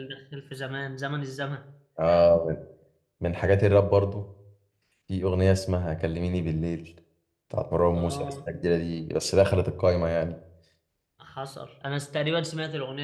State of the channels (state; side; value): identical; both; correlation 1.00